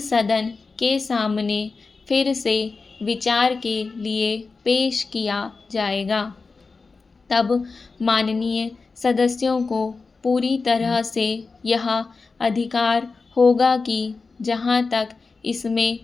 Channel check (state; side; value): quieter; right; 4.2 dB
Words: सदन के सामने फिर से विचार के लिए पेश किया जाएगा। तब माननीय सदस्यों को पूरी तरह से यह अधिकार होगा कि जहाँ तक इसमें